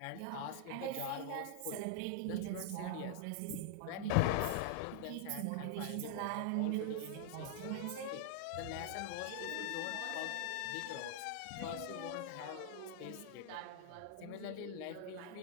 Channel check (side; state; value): both; different; correlation 0.00